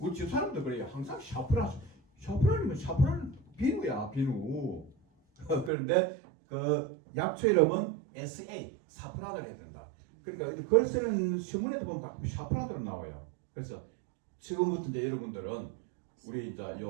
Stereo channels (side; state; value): left; drops out; at 5.7 s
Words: 집 사람도 그래요. 항상 샤프란이면 샤프란 비누야 비누. 그런데 그 약초 이름은 SA 사프란을 해야 된다. 그러니까 글 쓰는 신문에도 보면 가끔 샤프란으로 나와요. 그래서 지금부터 이제 여러분들은 우리 이제